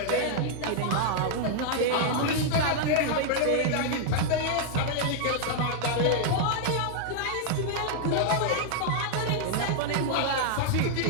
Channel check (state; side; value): different; both; correlation -0.01